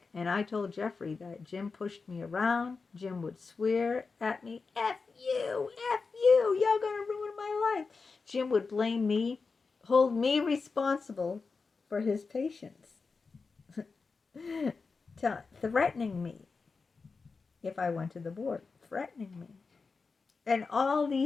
and I told Jeffrey that Jim pushed me around. Jim would swear at me, F you, you're going to ruin my life. Jim would blame me, hold me responsible for his patients, threatening me if I went to the board, threatening me. And all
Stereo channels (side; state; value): right; quieter; 4.5 dB